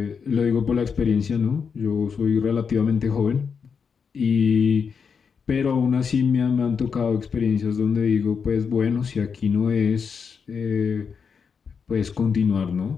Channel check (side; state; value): right; quieter; 6.1 dB